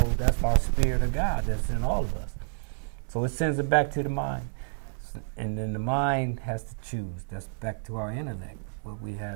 that's our spirit of God that's in all of us. So it sends it back to the mind. And then the mind has to choose. That's back to our intellect, where we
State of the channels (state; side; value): silent; left; digital silence